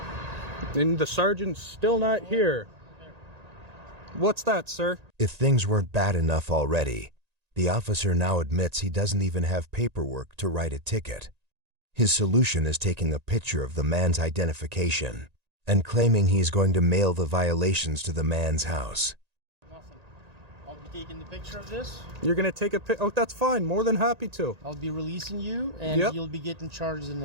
And the sergeant's still not here. What's that, sir? If things weren't bad enough already, the officer now admits he doesn't even have paperwork to write a ticket. His solution is taking a picture of the man's identification and claiming he's going to mail the violations to the man's house. Nothing. I'll be taking the picture of this. You're gonna take a pic? Oh, that's fine. More than happy to. I'll be releasing you, and Yep. you'll be getting charges in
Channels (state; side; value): late; left; 1.9 ms